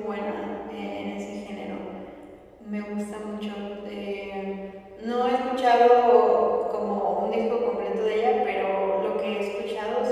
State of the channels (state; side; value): identical; both; correlation 1.00